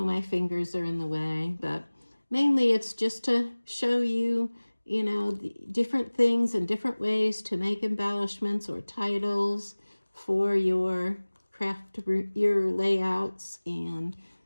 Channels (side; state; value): both; inverted; correlation -1.00